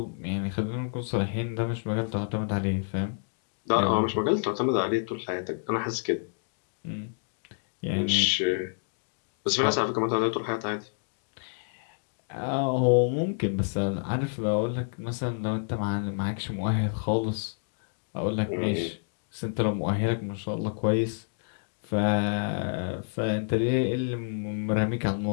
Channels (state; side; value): silent; right; digital silence